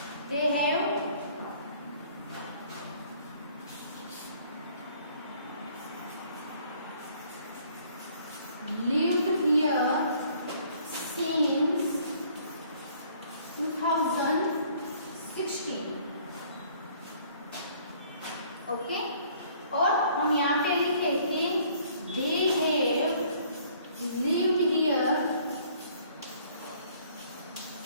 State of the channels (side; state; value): both; inverted; correlation -0.59